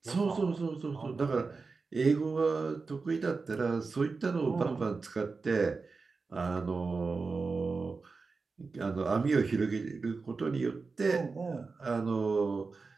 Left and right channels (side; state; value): left; quieter; 4.3 dB